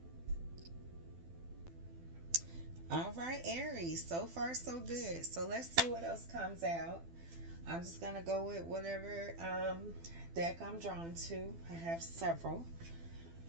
All right, Aries. So far, so good. So let's see what else comes out. I'm just going to go with whatever deck I'm drawn to. I have several.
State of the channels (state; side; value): late; left; 12 ms